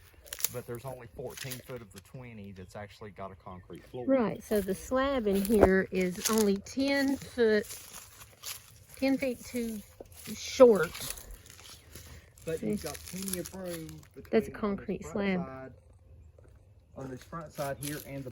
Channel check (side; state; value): both; identical; correlation 1.00